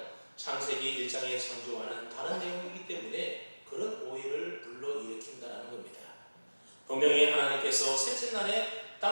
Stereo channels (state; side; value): inverted; both; correlation -1.00